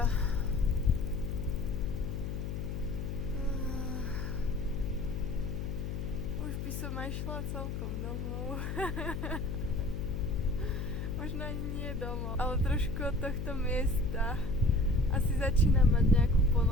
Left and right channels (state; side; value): noise; left; hum, 3 dB below the sound